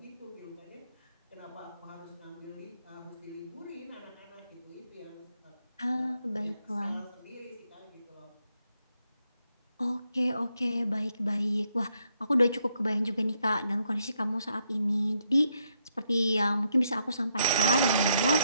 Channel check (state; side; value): inverted; both; correlation -0.77